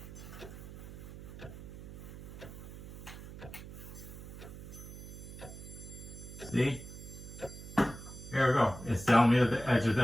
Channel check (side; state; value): right; noise; hum, 12 dB below the sound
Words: See? Here we go. It's telling me that the edge of